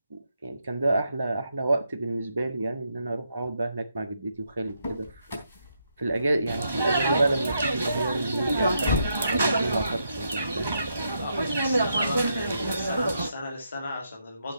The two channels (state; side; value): inverted; both; correlation -0.80